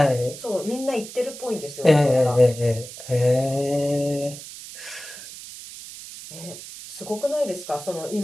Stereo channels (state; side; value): noise; right; hiss, 13 dB below the sound